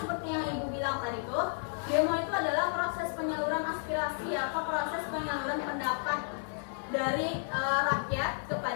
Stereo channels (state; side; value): silent; right; 56 dB below the other